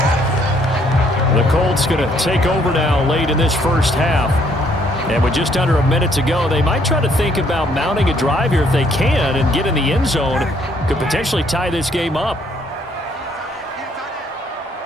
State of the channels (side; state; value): both; normal; correlation 0.67